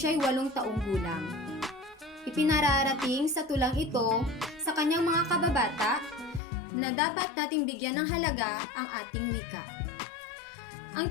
8 taong gulang. Ipinararating sa tulang ito sa kanyang mga kababata na dapat nating bigyan ng halaga ang ating wika. Ang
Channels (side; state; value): right; drops out; at 6.4 s